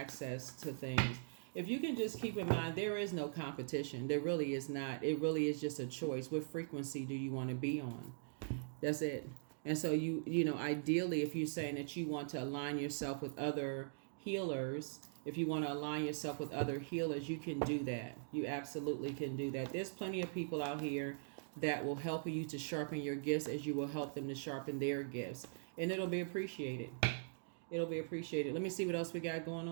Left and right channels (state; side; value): silent; left; digital silence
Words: to things. If you can just keep in mind, there is no competition. There really is not. It really is just a choice. What frequency do you want to be on? That's it. And so ideally, if you're saying that you want to align yourself with other healers, if you want to align yourself with other healers, you can do that. You absolutely can do that. There's plenty of people out here that will help you to sharpen your gifts as you will help them to sharpen their gifts. And it'll be appreciated. It'll be appreciated. Let me see what else we got going